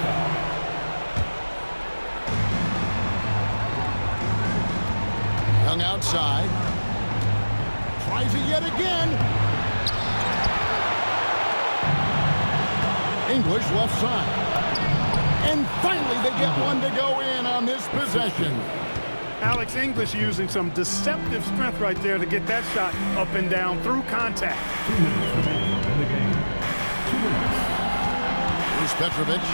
foul. Young outside. Tries it yet again. English left side. And finally they get one to go in on this possession. Alex English using some deceptive strength right there to get that shot up and down through contact. 2 minutes remaining in the game. 2 minutes. Here's Petrovic.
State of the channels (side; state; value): both; inverted; correlation -1.00